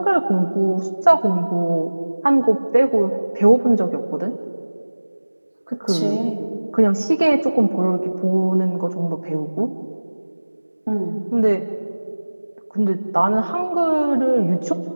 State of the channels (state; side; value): inverted; both; correlation -1.00